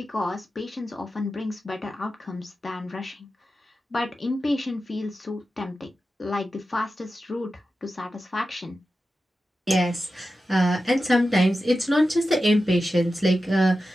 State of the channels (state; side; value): normal; both; correlation 0.92